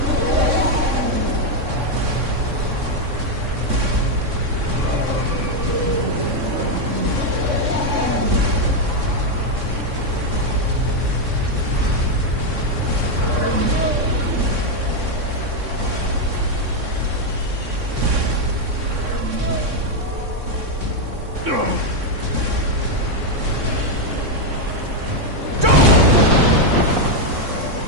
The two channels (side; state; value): left; late; 3.6 ms